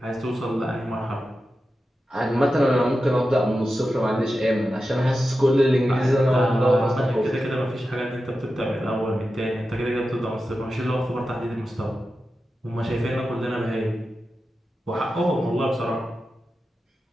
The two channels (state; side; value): normal; both; correlation 0.91